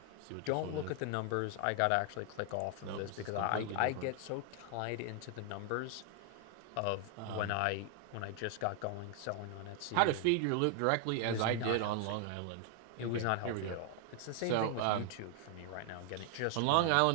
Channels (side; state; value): both; different; correlation 0.00